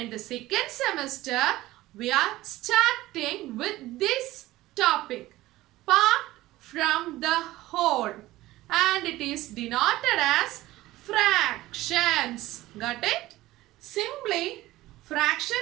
the second semester, we are starting with this topic, part from the whole, and it is denoted as fractions. Got it? Simply,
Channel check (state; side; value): quieter; left; 17.0 dB